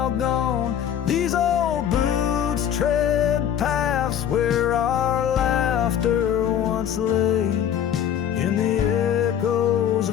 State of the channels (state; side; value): quieter; right; 9.5 dB